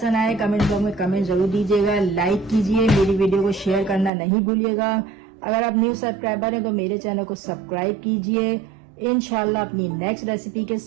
आए कमेंट बॉक्स में कमेंट जरूर दीजिएगा, लाइक कीजिए, मेरी वीडियो को शेयर करना नहीं भूलिएगा। अगर आप न्यू सब्सक्राइबर हैं तो मेरे चैनल को सब्सक्राइब कीजिए। इंशाल्लाह अपनी नेक्स्ट रेसिपी के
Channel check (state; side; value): drops out; left; at 4.1 s